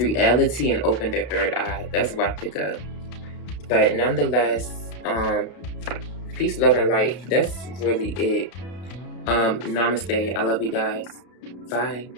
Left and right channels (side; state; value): right; late; 32 ms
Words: and open their third eye. That's what I pick up. But nonetheless, peace, love, and light. That's really it. Namaste. I love you guys. Bye.